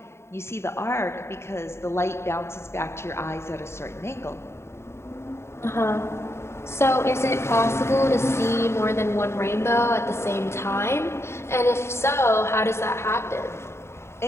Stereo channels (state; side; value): late; right; 0.13 ms